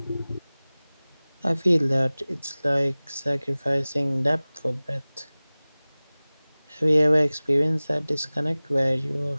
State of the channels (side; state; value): both; inverted; correlation -0.99